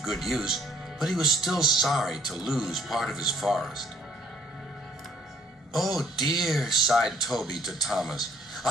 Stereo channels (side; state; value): both; normal; correlation 0.61